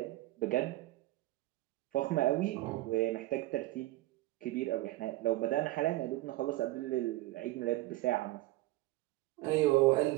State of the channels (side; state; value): left; quieter; 17.8 dB